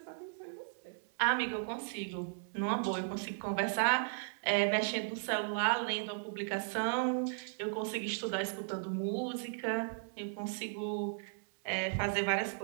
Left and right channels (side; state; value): left; silent; digital silence